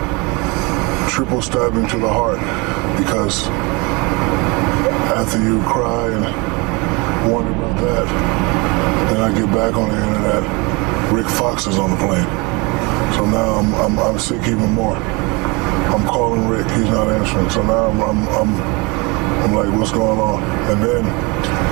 stabbing to the heart, because after you cry and wonder about that, then I get back on the internet, Rick Fox is on the plane. So now I'm sick even more. I'm calling Rick, he's not answering. So now I'm like, what's going on? And then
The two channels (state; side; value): quieter; left; 27.5 dB